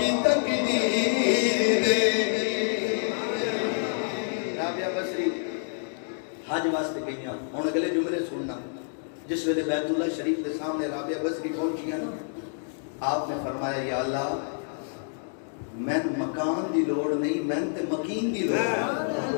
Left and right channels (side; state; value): right; silent; digital silence